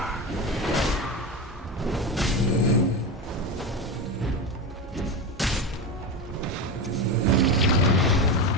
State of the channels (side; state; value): both; normal; correlation 0.19